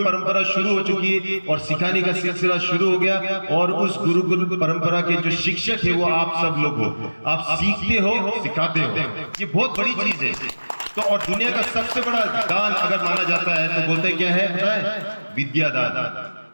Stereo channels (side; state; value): both; inverted; correlation -1.00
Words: परंपरा शुरू हो चुकी है और सिखाने का सिलसिला शुरू हो गया। और उस गुरुकुल परंपरा के जो शिक्षक है वो आप सब लोग हो। आप सीखते हो, सिखाते हो, ये बहुत बड़ी चीज है। तो और दुनिया का सबसे बड़ा दान अगर माना जाता है तो बोलते क्या है? विद्या दान।